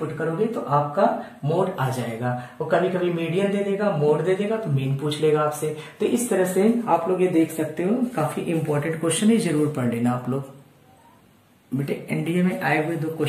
करोगे तो आपका मोड आ जाएगा। और कभी कभी मीडियन दे देगा, मोड दे देगा, तो मीन पूछ लेगा आपसे। तो इस तरह से आप लोग ये देख सकते हो, काफी इंपॉर्टेंट क्वेश्चन है, जरूर पढ़ लेना आप लोग। बेटे एनडीए में आए हुए 2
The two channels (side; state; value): both; identical; correlation 1.00